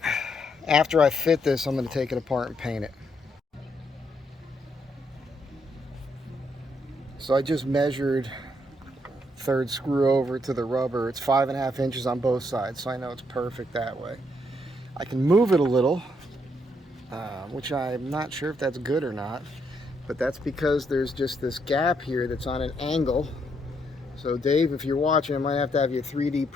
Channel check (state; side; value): normal; both; correlation 0.75